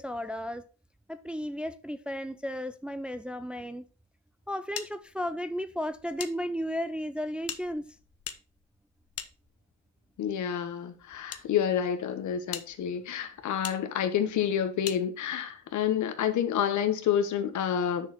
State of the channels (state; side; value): quieter; right; 6.3 dB